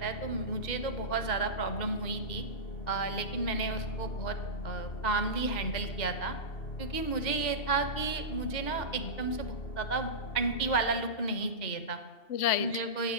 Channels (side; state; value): right; late; 2.7 ms